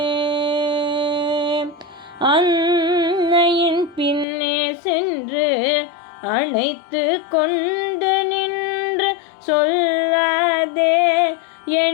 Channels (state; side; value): drops out; right; at 4.2 s